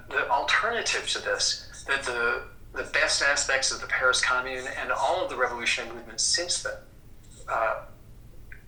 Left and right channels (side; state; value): both; identical; correlation 1.00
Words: the alternative to this, that the best aspects of the Paris Commune and all of the revolutionary movements since then